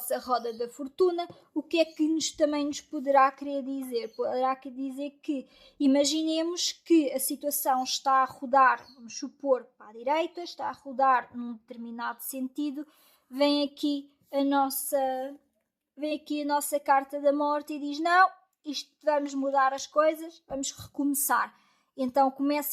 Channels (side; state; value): both; identical; correlation 1.00